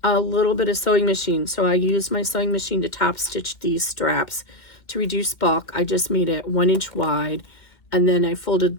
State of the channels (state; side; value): late; right; 2.1 ms